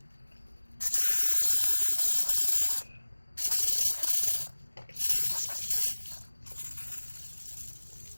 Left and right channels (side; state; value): both; inverted; correlation -1.00